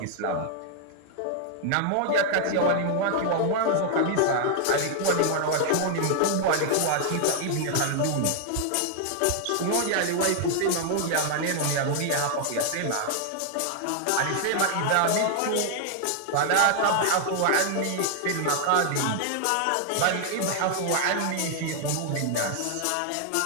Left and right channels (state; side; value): different; both; correlation 0.00